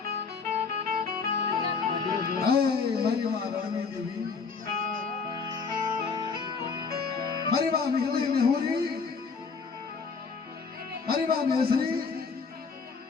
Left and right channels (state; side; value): quieter; right; 5.1 dB